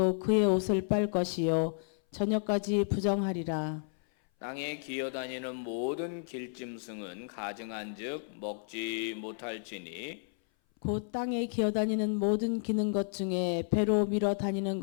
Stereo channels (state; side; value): silent; right; 56 dB below the other